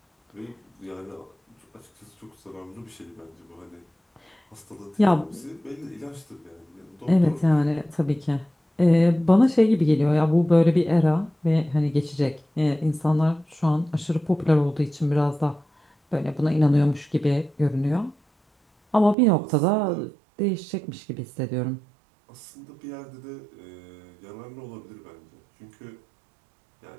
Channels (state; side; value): drops out; left; at 19.2 s